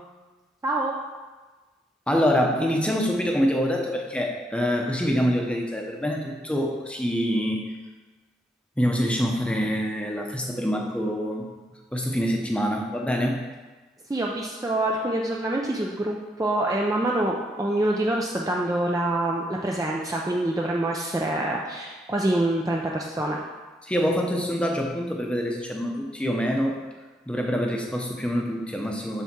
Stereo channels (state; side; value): normal; both; correlation 0.77